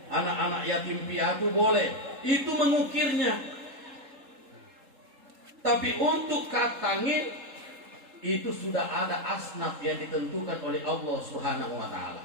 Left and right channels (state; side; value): late; left; 3.7 ms